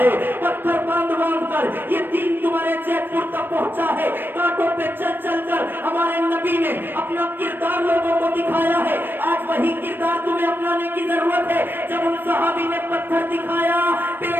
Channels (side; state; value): left; late; 0.096 ms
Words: है, पत्थर बांध कर ये दीन तुम्हारे जयपुर तक पहुंचा है। कांटों पे चल चल कर हमारे नबी ने अपना किरदार लोगों को दिखाया है। आज वही किरदार तुम्हें अपनाने की जरूरत है। जब उन सहाबी ने पत्थर दिखाया,